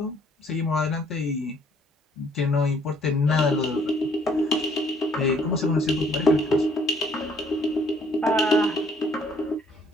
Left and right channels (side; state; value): both; normal; correlation 0.63